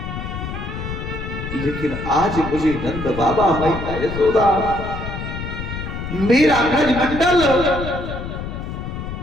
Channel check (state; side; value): noise; left; rumble, 7 dB below the sound